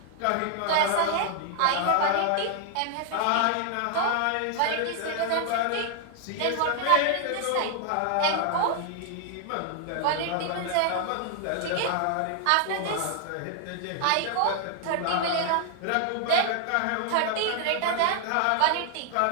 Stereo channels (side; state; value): both; different; correlation 0.00